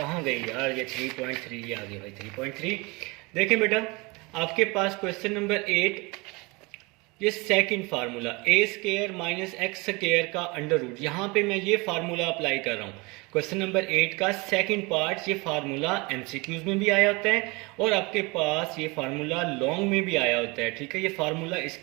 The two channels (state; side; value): quieter; left; 26.2 dB